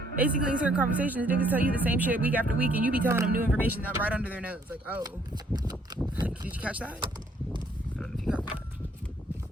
Basically, in certain conversations, niggas tell you the same shit week after week, and you be telling them new information that right under their nose. Like, oh, did you catch that? I don't know if you caught that.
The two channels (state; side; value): normal; both; correlation 0.65